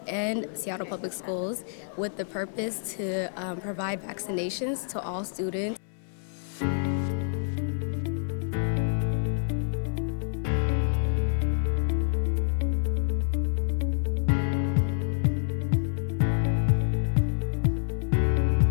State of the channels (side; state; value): right; silent; digital silence